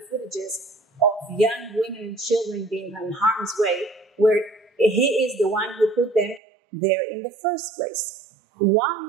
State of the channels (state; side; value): drops out; left; at 6.4 s